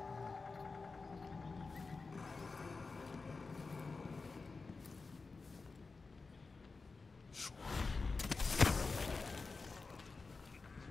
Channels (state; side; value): quieter; right; 4.1 dB